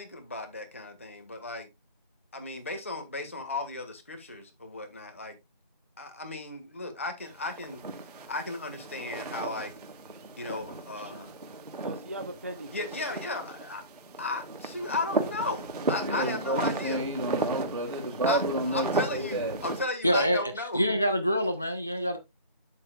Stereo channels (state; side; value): inverted; both; correlation -0.33